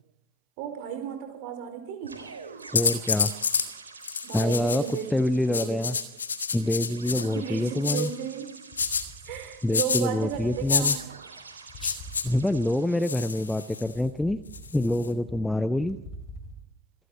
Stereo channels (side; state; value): both; normal; correlation 0.43